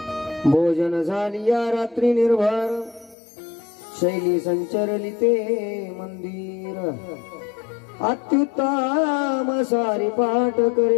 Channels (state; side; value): drops out; right; at 3.2 s